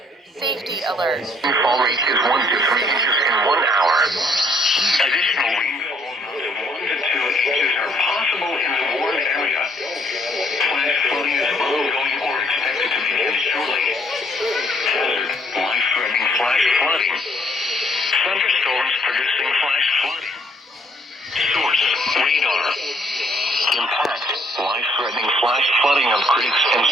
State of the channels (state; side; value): normal; both; correlation 0.66